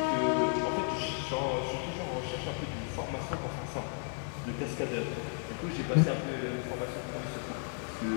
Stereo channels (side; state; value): right; silent; 55 dB below the other